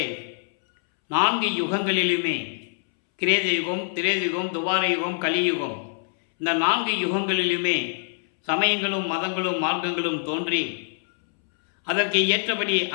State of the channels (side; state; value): right; silent; 62 dB below the other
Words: 4 யுகங்களிலுமே, கிரேத யுகம், திரேத யுகம், துவார யுகம், கலியுகம், இந்த 4 யுகங்களிலுமே சமயங்களும் மதங்களும் மார்க்கங்களும் தோன்றி அதற்கு ஏற்றபடி